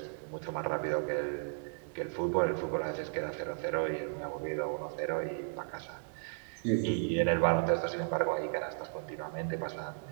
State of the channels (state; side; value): silent; left; digital silence